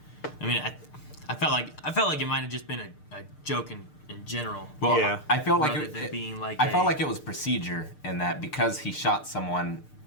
I mean, I felt like it might have just been a joke in general. Well, yeah. I felt like I felt like it was procedure in that because he shot someone,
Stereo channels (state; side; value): late; right; 6.6 ms